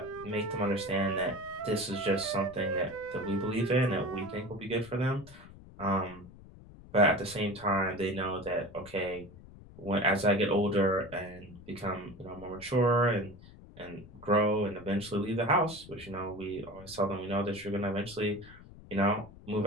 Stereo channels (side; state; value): left; noise; rumble, 19 dB below the sound